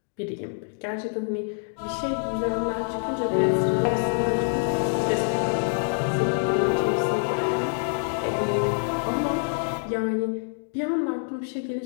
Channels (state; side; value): silent; right; 61 dB below the other